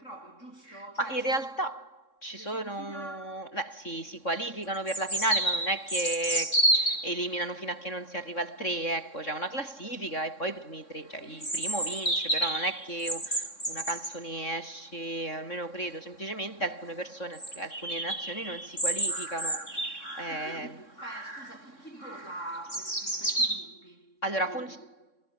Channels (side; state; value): right; late; 3.6 ms